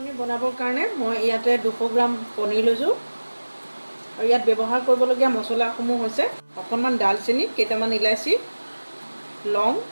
বনাবৰ কাৰণে মই ইয়াতে 200 গ্ৰাম পনীৰ লৈছোঁ আৰু ইয়াত ব্যৱহাৰ কৰিবলগীয়া মছলাসমূহ হৈছে অকণমান দালচেনি, কেইটামান ইলাচি, লং,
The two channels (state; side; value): inverted; both; correlation -1.00